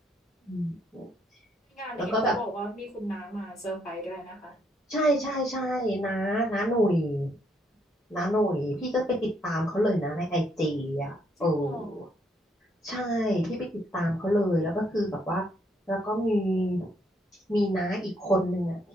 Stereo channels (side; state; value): both; normal; correlation 0.72